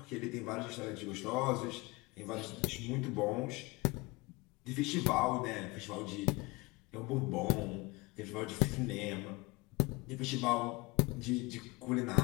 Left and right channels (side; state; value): right; quieter; 24.6 dB